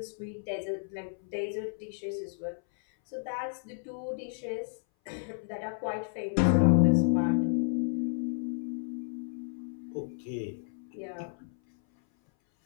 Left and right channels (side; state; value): right; silent; 57 dB below the other